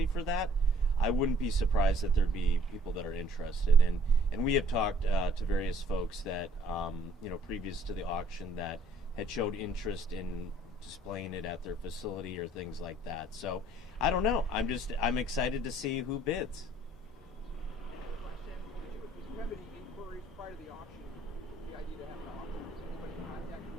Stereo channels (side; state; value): both; normal; correlation 0.60